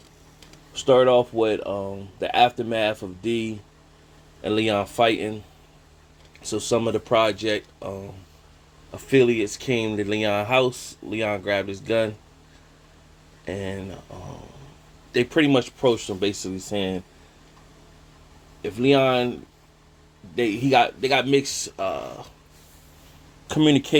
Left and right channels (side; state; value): both; identical; correlation 1.00